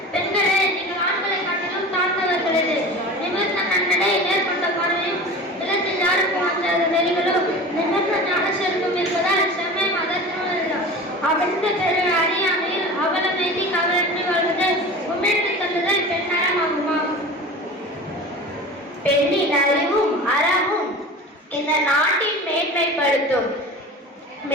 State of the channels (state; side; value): normal; both; correlation 0.35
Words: அறியாமையில் அவலமைதி கவலற்றி வாழ்வதல் உமிழ்ந்து தள்ளுதல் பெண்ணறமாகுமா? பெண்ணின் அறிவும் அறமும் இந்த நாட்டின் மேன்மைப்படுத்தும்.